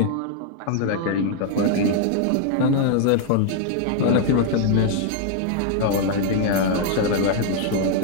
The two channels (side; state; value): both; different; correlation -0.01